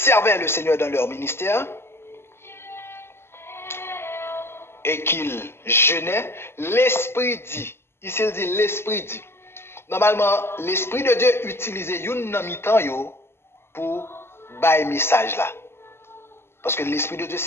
le Seigneur dans leur ministère et qu'ils jeûnaient, l'Esprit dit, ici il dit l'Esprit dit. Normalement, l'Esprit de Dieu utilisait une mi-temps pour bailler message là. Parce que l'Esprit de Dieu,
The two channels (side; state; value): right; late; 0.12 ms